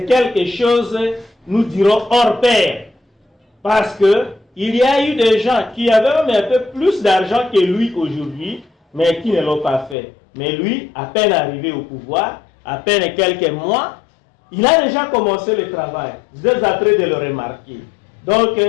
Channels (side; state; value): right; drops out; at 10.0 s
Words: quelque chose, nous dirons, hors pair. Parce qu'il y a eu des gens qui avaient même un peu plus d'argent que lui aujourd'hui, mais qui ne l'ont pas fait. Mais lui, à peine arrivé au pouvoir, à peine quelques mois, il a déjà commencé le travail. Vous êtes en train de le remarquer. Donc,